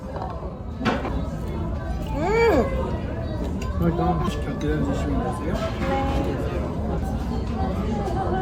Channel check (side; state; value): both; identical; correlation 1.00